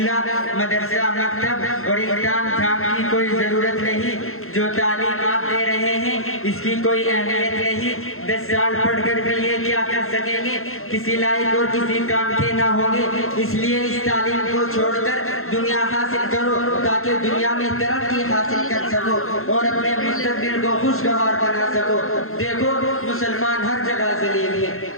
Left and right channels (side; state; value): right; late; 0.62 ms